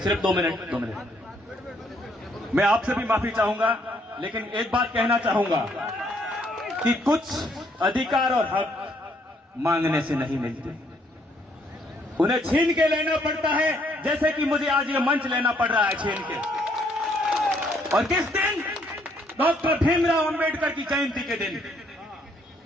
2 मिनट। मैं आपसे भी माफी चाहूंगा, लेकिन एक बात कहना चाहूंगा कि कुछ अधिकार और हक मांगने से नहीं मिलते, उन्हें छीन के लेना पड़ता है, जैसे कि मुझे आज ये मंच लेना पड़ रहा है छीन के। और किस दिन? डॉक्टर भीमराव अंबेडकर की जयंती के दिन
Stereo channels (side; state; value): both; normal; correlation 0.68